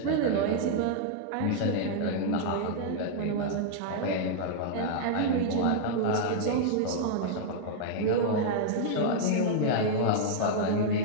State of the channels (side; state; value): both; different; correlation -0.01